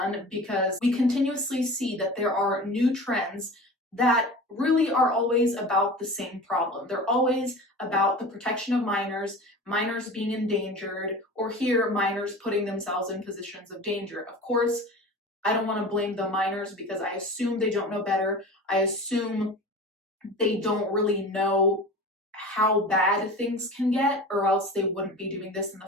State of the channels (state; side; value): normal; both; correlation 0.35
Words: because we continuously see that there are new trends that really are always about the same problem. They're always about the protection of minors, minors being endangered, or here, minors putting themselves in positions of danger. Of course, I don't want to blame the minors, because I assume they don't know better. I assume they don't really know how bad things can get, or else they wouldn't be doing this in